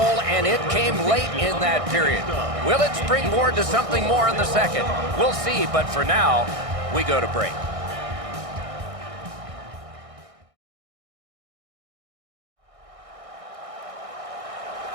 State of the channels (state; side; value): late; left; 1.6 ms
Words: and it came late in that period. Will it springboard to something more in the second? We'll see, but for now, we go to break.